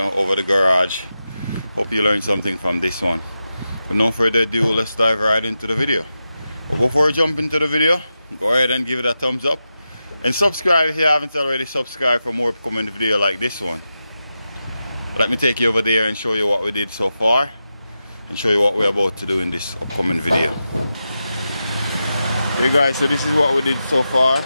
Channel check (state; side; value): inverted; both; correlation -0.90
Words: over the garage. Hope you learned something from this one. But no further ado, let's dive right into the video. But before we jump into the video, go ahead and give it a thumbs up and subscribe if you haven't already subscribed for more upcoming video like this one. Let me take you over there and show you what we did so far and show you what we're about to do in this upcoming video. Hey guys, so this is what we did so far.